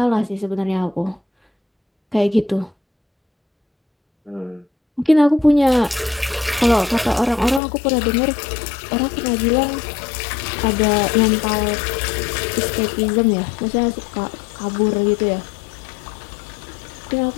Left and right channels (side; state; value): right; drops out; at 7.6 s